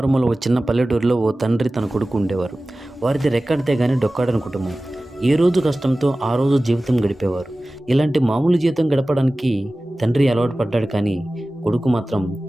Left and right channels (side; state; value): both; normal; correlation 0.97